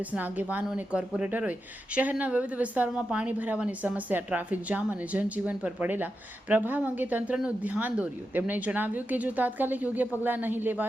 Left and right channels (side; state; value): both; normal; correlation 0.89